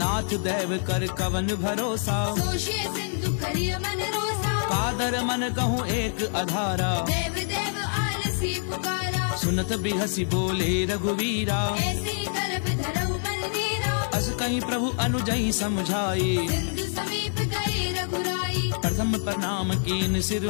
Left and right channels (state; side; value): silent; right; 60 dB below the other